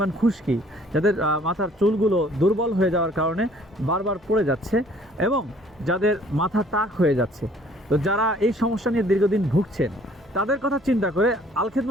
খুশকি, যাদের মাথার চুলগুলো দুর্বল হয়ে যাওয়ার কারণে বারবার পড়ে যাচ্ছে এবং যাদের মাথা টাক হয়ে যাচ্ছে, তো যারা এই সমস্যা নিয়ে দীর্ঘদিন ভুগছেন, তাদের কথা চিন্তা করে আল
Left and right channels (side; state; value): both; normal; correlation 0.58